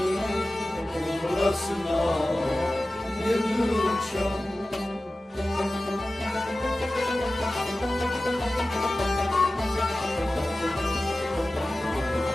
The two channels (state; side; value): normal; both; correlation 0.95